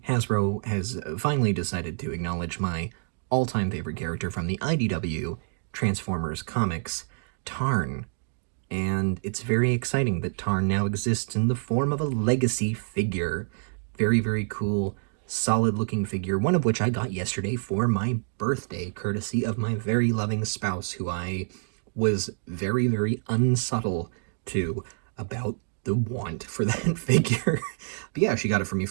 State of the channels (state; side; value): silent; left; digital silence